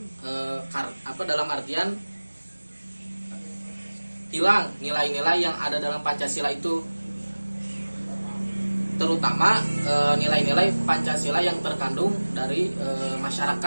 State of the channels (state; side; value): inverted; both; correlation -1.00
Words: dalam artian hilang nilai-nilai yang ada dalam Pancasila itu, terutama nilai-nilai Pancasila yang terkandung dari